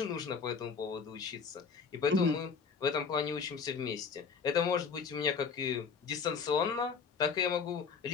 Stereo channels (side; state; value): right; quieter; 5.7 dB